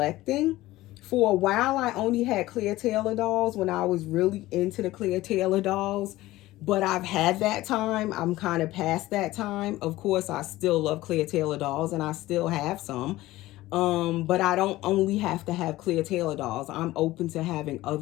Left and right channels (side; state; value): right; quieter; 17.2 dB